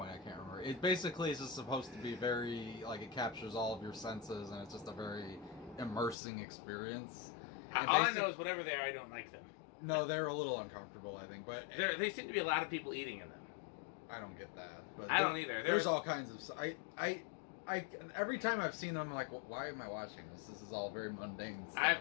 I can't remember. It basically is just supposed to be very, like, it captures all of your senses, and it's just a very immersing experience. All I know is whatever they are, I don't like them. No, they're a little uncomfortable, I think, but... They seem to be a lot of people eating in them. I don't get that. But I don't either. There's all kinds of. I every time I've seen them, I'm like, why am I watching this? This is all very mundane stuff.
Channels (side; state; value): right; drops out; at 6.2 s